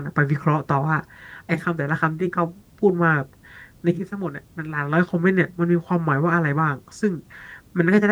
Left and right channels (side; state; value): both; identical; correlation 1.00